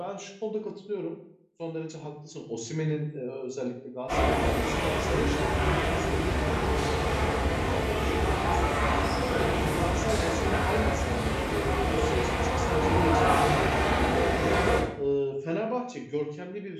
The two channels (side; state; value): both; identical; correlation 1.00